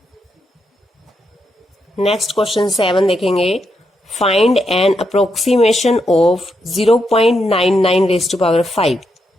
Next question 7 देखेंगे। Find an approximation of 0.99 raised to power 5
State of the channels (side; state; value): both; normal; correlation 0.81